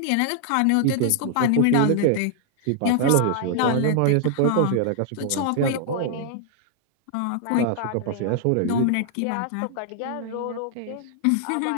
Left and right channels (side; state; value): both; different; correlation 0.00